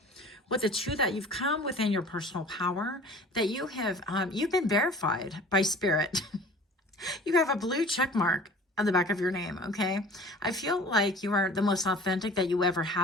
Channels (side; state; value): both; normal; correlation 0.45